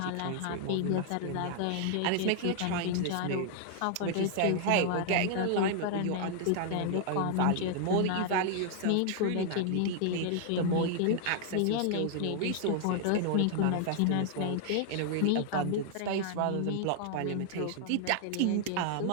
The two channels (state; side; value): different; both; correlation 0.00